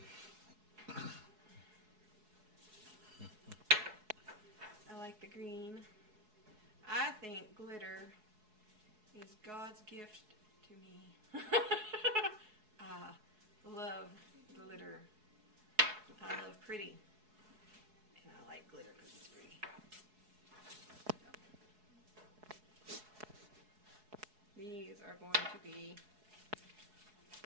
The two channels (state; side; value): late; left; 4.7 ms